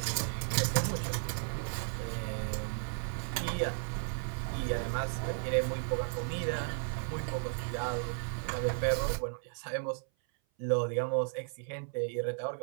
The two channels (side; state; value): left; silent; 55 dB below the other